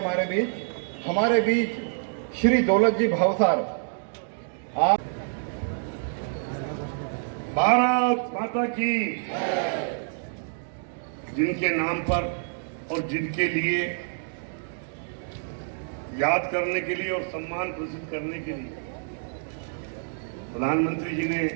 हमारे बीच श्री दौलत जी भावसार। भारत माता की, जिनके नाम पर और जिनके लिए याद करने के लिए और सम्मान प्रदर्शित करने के लिए प्रधानमंत्री जी ने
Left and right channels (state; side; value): silent; left; digital silence